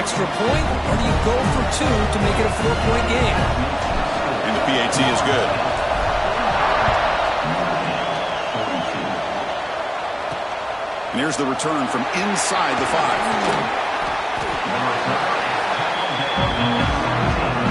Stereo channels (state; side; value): identical; both; correlation 1.00